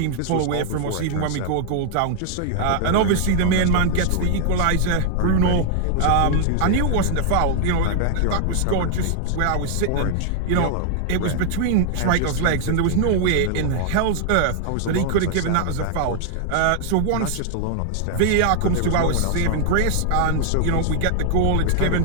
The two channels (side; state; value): both; different; correlation 0.00